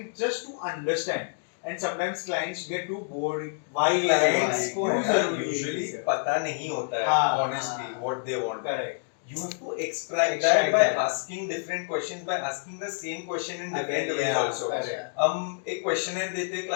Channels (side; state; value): right; silent; digital silence